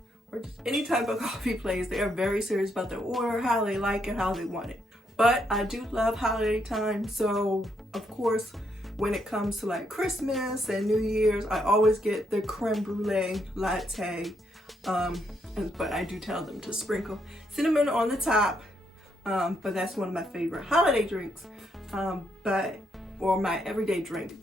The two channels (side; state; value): both; normal; correlation 0.76